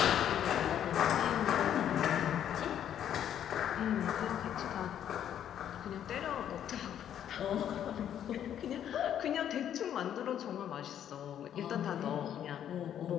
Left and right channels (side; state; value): right; quieter; 10.0 dB